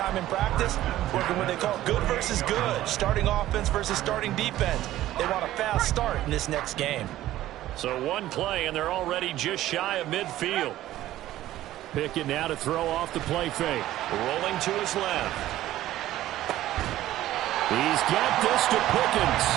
in practice working what they call good versus good, starting offense versus starting defense. They want a fast start in this next game. So one play, and they're already just shy of midfield. Pickett now to throw off the play fake. Rolling to his left. He's got this to Pickens.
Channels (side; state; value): left; quieter; 14.3 dB